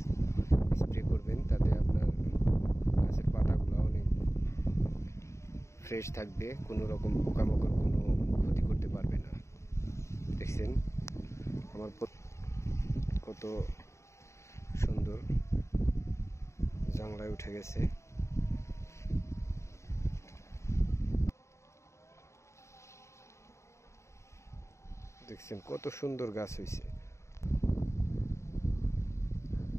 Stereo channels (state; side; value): late; right; 0.14 ms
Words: স্প্রে করবেন, তাতে আপনার গাছের পাতাগুলো অনেক ফ্রেশ থাকবে, কোনো রকম পোকামাকড় কোনো ক্ষতি করতে পারবে না। দেখছেন আমার কত সুন্দর জাংলায় উঠে গেছে। দেখছেন কত সুন্দর গাছ হয়েছে।